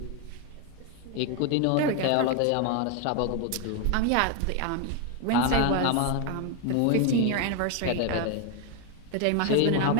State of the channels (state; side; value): different; both; correlation 0.01